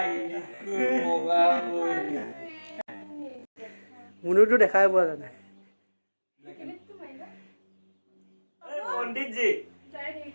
বগা কই মুনুটো দেখাই পোৱা যায় पंडित जी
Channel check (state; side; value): inverted; both; correlation -1.00